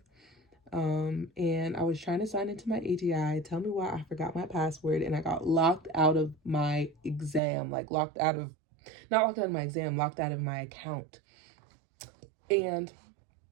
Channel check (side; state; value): left; drops out; at 7.4 s